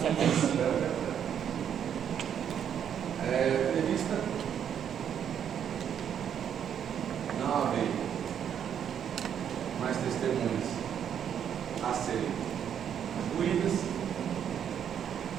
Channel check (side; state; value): left; quieter; 8.8 dB